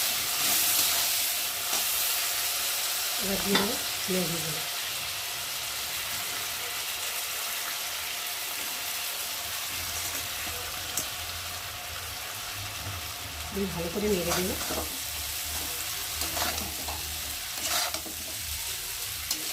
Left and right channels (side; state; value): both; identical; correlation 1.00